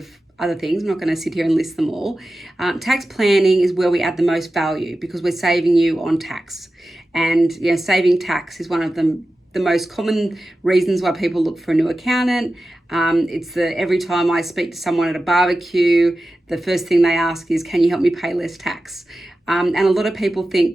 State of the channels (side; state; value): both; normal; correlation 0.94